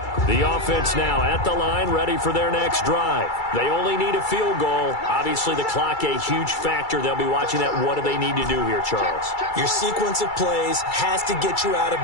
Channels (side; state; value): right; late; 2.3 ms